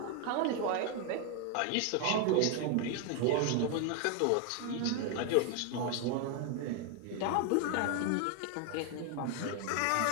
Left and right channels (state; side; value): different; both; correlation 0.01